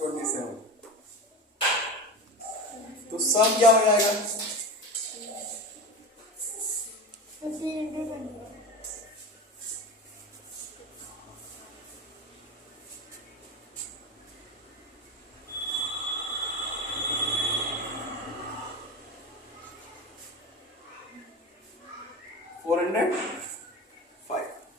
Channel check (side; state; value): both; normal; correlation 0.26